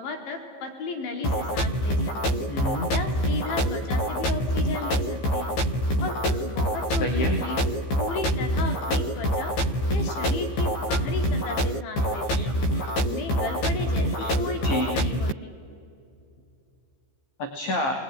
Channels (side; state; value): right; late; 15 ms